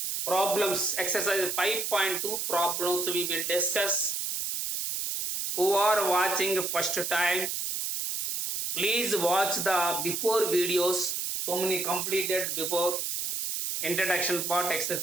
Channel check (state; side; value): noise; right; hiss, 2 dB below the sound